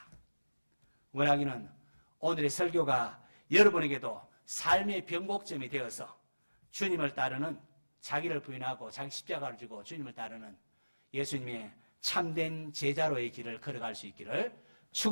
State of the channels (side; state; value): both; inverted; correlation -1.00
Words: 원하기는 오늘의 설교가 여러분에게도 삶의 변곡점이 되어서 주님을 따르는, 자기를 부인하고 자기 십자가를 지고 주님을 따르는 예수님의 참된 제자로의 길을 걸어갈 수 있기를